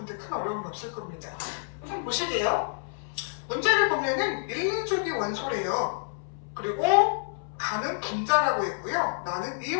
큰 어려움이 없을 겁니다. 우선 보실게요. 문제를 보면은 1, 2족이 원소래요. 그리고 가는 분자라고 했고요. 나는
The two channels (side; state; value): right; silent; 58 dB below the other